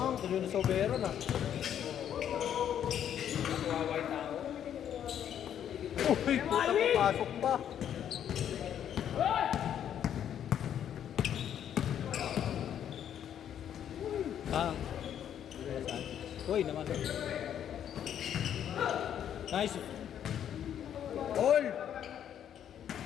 tuloy na sobero na. Kawawa tao. Uy, puta, papasok pa. Ah. Uy, naman. Nice. All!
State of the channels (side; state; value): right; quieter; 9.7 dB